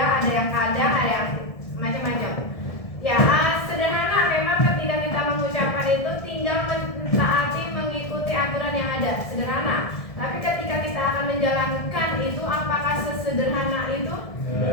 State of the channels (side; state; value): right; late; 1.7 ms